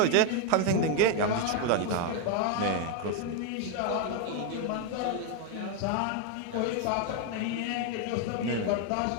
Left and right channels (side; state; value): both; different; correlation 0.01